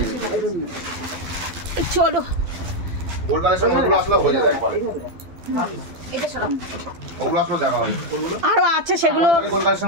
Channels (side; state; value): left; late; 12 ms